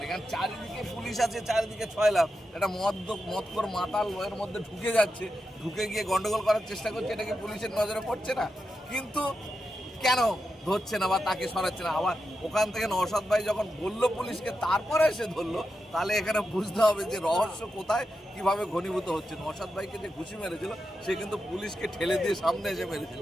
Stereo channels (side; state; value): both; normal; correlation 0.88